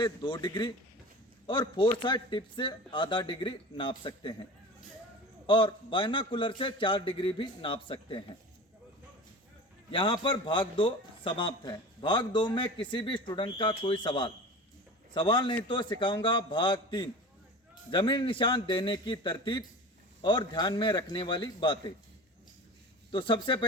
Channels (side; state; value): both; normal; correlation 0.35